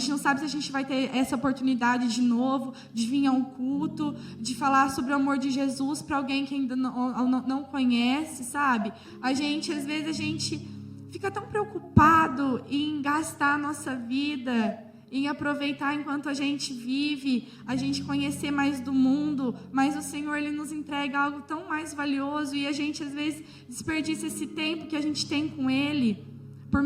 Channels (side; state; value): both; identical; correlation 1.00